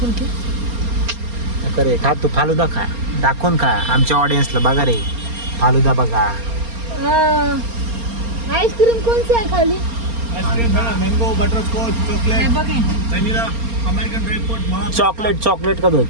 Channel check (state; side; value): late; left; 4.3 ms